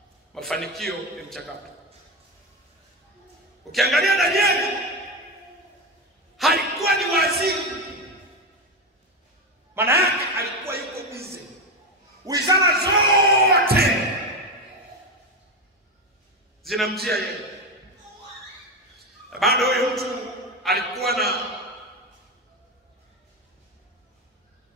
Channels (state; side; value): normal; both; correlation 0.14